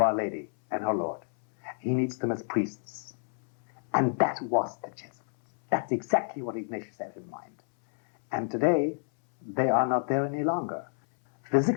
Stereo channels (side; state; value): right; silent; 59 dB below the other